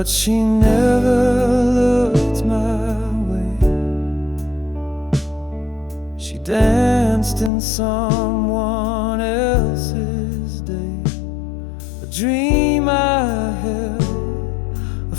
she never looked my way. She danced in someone else's day, a dream I held, a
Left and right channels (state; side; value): drops out; right; at 7.5 s